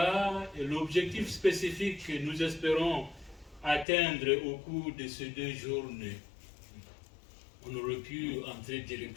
et l'objectif spécifique que nous espérons atteindre au cours de ces 2 journées. On aurait pu entrer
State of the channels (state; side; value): drops out; right; at 3.9 s